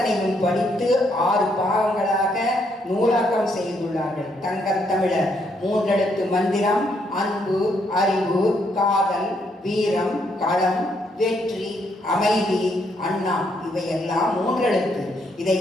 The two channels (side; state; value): both; normal; correlation 0.73